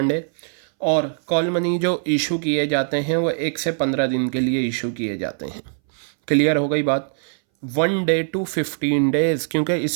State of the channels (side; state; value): left; silent; 63 dB below the other